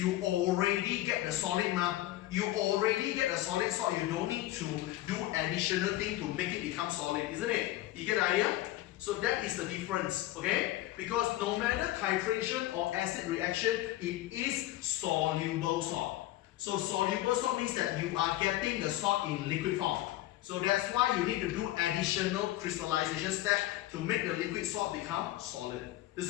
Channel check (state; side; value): quieter; right; 15.7 dB